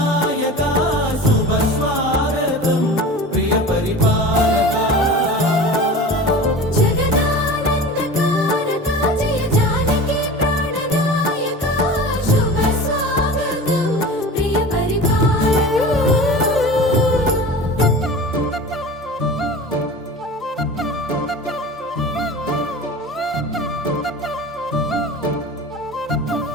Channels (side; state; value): both; normal; correlation 0.35